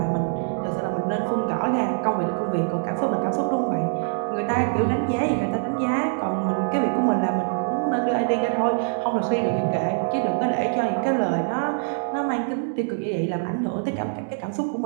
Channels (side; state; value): left; silent; digital silence